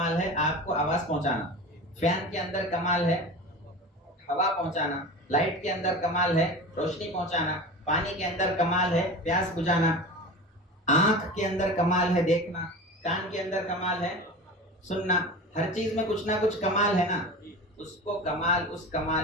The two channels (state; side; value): normal; both; correlation 0.32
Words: ہے آپ کو آواز پہنچانا، فین کے اندر کمال ہے ہوا پہنچانا، لائٹ کے اندر کمال ہے روشنی پہنچانا، پانی کے اندر کمال ہے پیاس بجھانا، آنکھ کے اندر کمال ہے دیکھنا، کان کے اندر کمال ہے سننا۔ ہر چیز میں کچھ نہ کچھ کمال ہے نا، اس کو کمال، اس